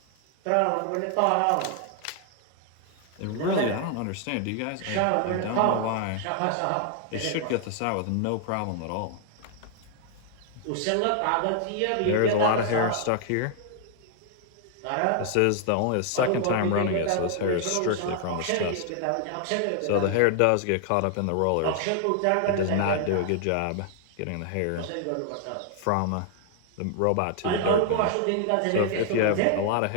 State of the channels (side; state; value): both; different; correlation 0.00